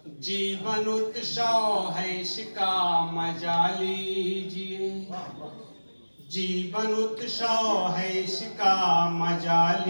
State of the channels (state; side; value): inverted; both; correlation -1.00